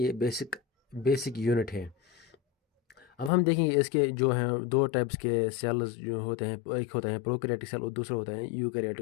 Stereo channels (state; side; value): drops out; right; at 3.3 s